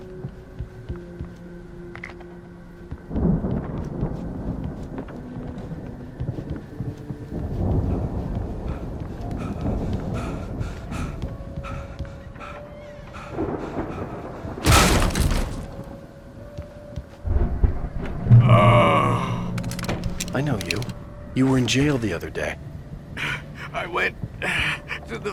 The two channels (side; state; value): both; identical; correlation 1.00